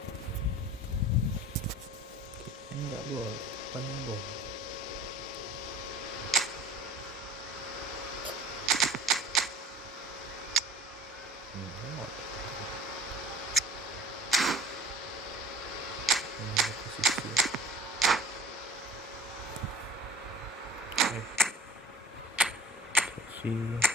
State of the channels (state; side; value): normal; both; correlation 0.44